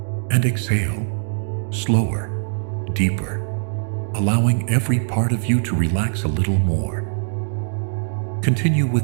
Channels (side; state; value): left; silent; digital silence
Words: and exhale, slower, deeper, allowing every part of you to relax a little more. Continue